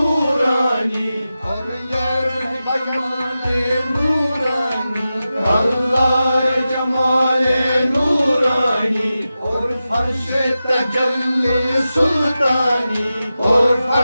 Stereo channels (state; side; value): inverted; both; correlation -0.93